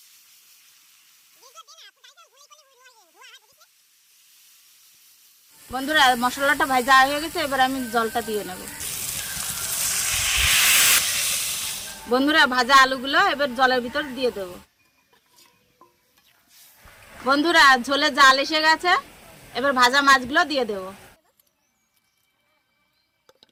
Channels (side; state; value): both; identical; correlation 1.00